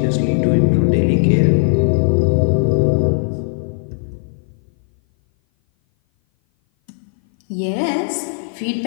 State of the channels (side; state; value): right; silent; 58 dB below the other